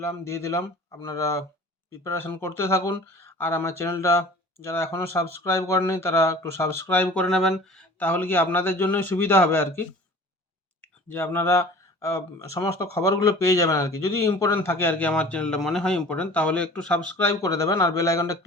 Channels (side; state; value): both; normal; correlation 0.44